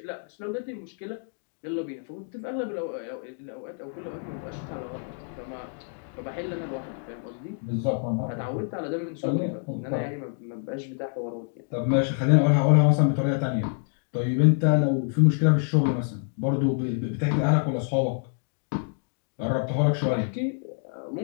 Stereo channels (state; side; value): silent; right; 60 dB below the other